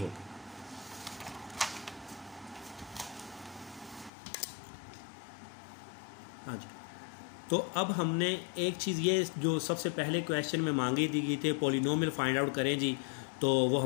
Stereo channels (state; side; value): drops out; right; at 4.1 s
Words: हाँ जी। तो अब हमने एक चीज़ ये जो सबसे पहले क्वेश्चन में मांगी दी गई थी पॉलिनोमियल फाइंड आउट करें जी, तो वो